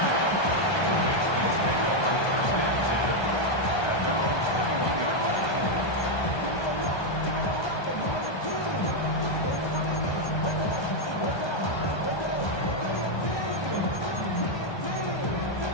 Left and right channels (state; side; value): late; right; 1.2 ms